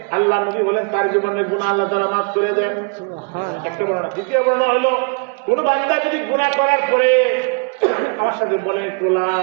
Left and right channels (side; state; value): left; quieter; 35.6 dB